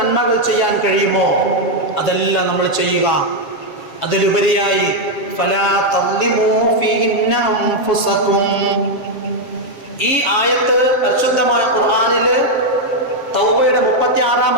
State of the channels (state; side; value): late; right; 7.2 ms